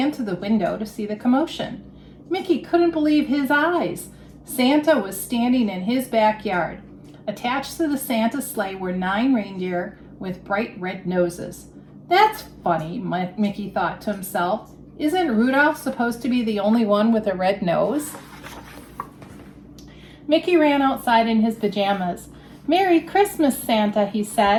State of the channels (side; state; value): both; identical; correlation 1.00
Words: to the window to see the commotion. Mickey couldn't believe his eyes. Santa was standing in his backyard. Attached to the Santa sleigh were 9 reindeer with bright red noses. That's funny, Mickey thought to himself. Isn't Rudolph supposed to be the only one with a red nose? Mickey ran outside in his pajamas. "Merry Christmas, Santa," he